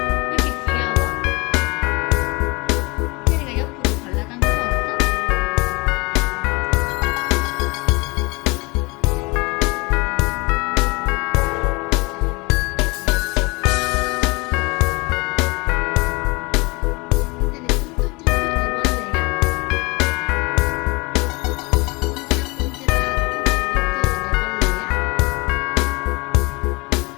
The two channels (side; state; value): right; quieter; 26.2 dB